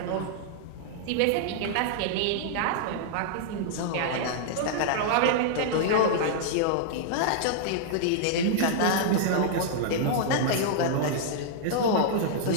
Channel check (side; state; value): both; different; correlation -0.01